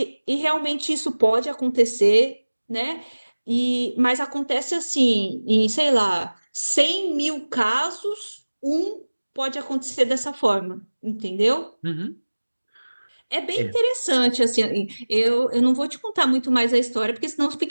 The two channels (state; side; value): inverted; both; correlation -1.00